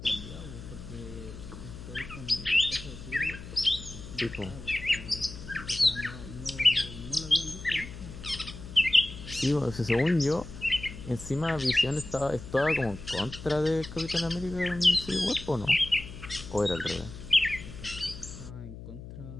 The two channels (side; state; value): left; noise; hum, 13 dB below the sound